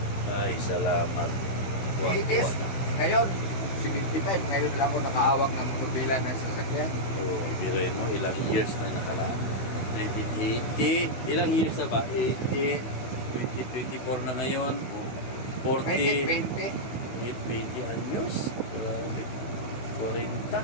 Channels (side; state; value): right; late; 16 ms